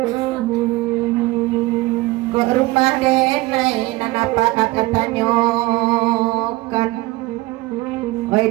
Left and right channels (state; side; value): quieter; left; 20.2 dB